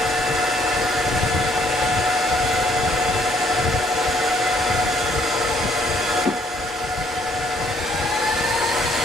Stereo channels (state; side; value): normal; both; correlation 0.66